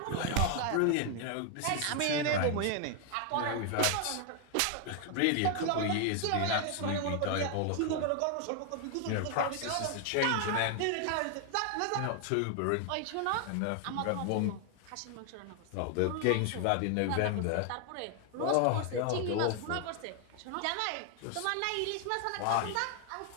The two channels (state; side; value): different; both; correlation 0.00